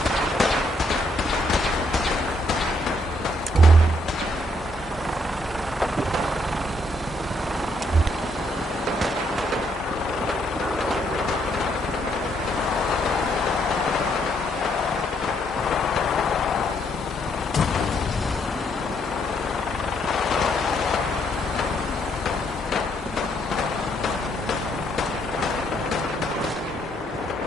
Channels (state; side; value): normal; both; correlation 0.72